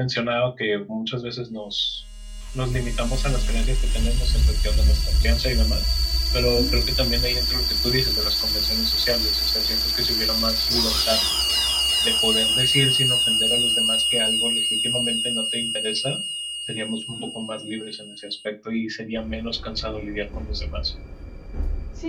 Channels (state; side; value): identical; both; correlation 1.00